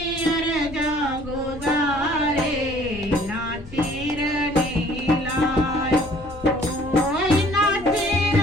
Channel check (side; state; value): left; noise; hum, 18 dB below the sound